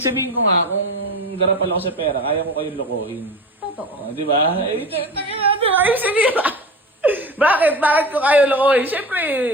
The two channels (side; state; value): both; normal; correlation 0.31